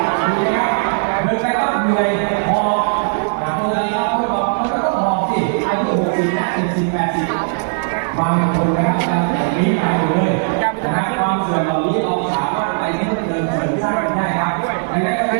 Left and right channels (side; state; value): left; silent; 67 dB below the other